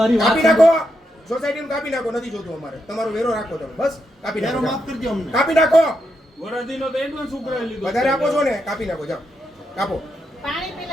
મારી વાત કાપી નાખો, સોસાયટીનું કાપી નાખો, નથી જોતું અમારે. તમારો વેરો રાખો તમે, બસ કાપી નાખો, માફ કરજો અમને. કાપી નાખો. વરદીનો તો એડવાન્સ ઉઘરાવી લીધો વધારે આપો છો ને, કાપી નાખો, જાઓ કાપો. પાણી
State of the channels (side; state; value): both; normal; correlation 0.82